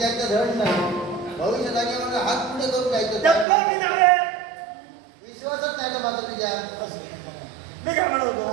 धड नाही. भविष्य जागेवर हात पुढे करून जायचं. डब्बा मी नव्हे. विश्वासच नाही ना माझा तुझ्या. मी काय म्हणत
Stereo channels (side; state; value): left; drops out; at 3.5 s